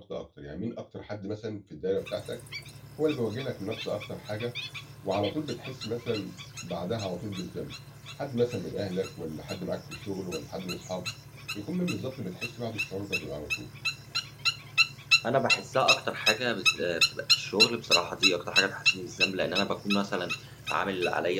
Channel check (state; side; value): identical; both; correlation 1.00